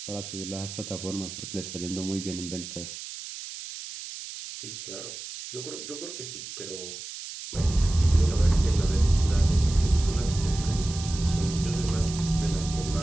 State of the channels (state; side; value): noise; right; hiss, 10 dB below the sound